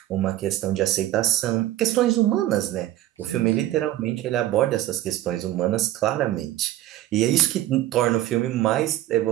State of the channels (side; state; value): left; quieter; 14.0 dB